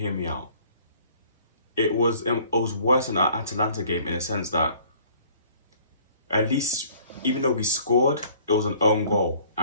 me out. It was worse than an Atalanta game in a sense that at least, even though we scored, it was an own goal.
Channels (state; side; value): inverted; both; correlation -0.55